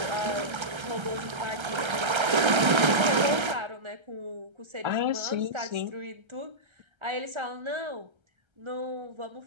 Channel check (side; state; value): left; late; 1.3 ms